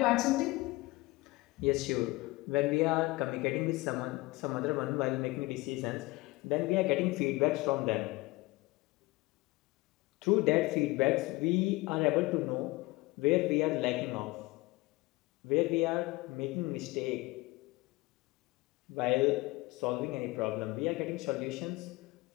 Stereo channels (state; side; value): quieter; right; 21.8 dB